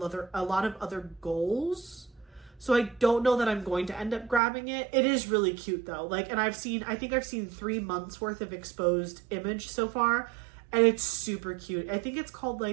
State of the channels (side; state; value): left; drops out; at 4.4 s